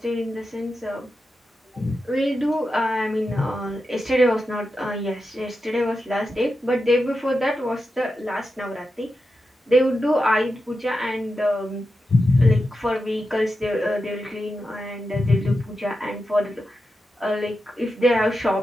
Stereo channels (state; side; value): normal; both; correlation 0.89